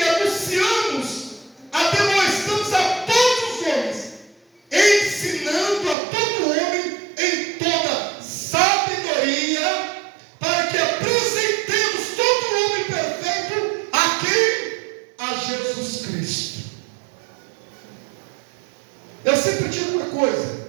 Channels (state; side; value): drops out; left; at 6.0 s